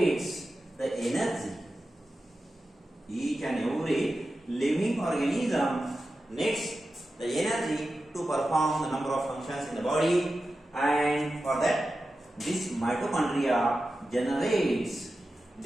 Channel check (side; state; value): both; normal; correlation 0.93